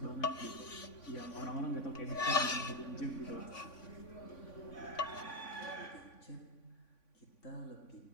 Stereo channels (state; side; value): late; right; 3.5 ms